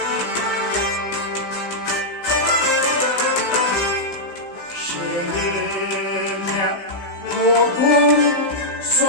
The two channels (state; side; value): late; right; 16 ms